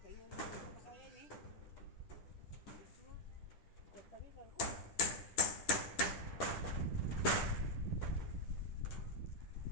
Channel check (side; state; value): right; late; 10 ms